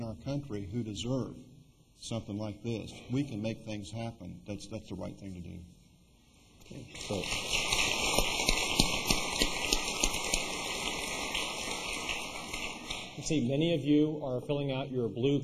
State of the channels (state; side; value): identical; both; correlation 1.00